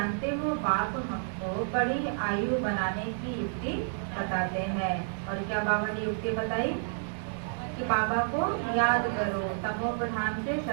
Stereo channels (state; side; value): silent; left; digital silence